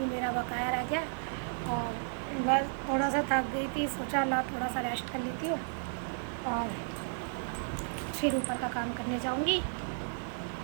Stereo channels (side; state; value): left; silent; digital silence